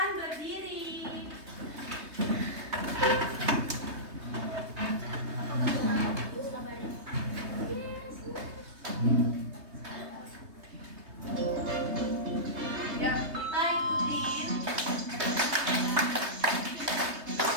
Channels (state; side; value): late; left; 3.2 ms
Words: berdiri. Ya, kita ikutin.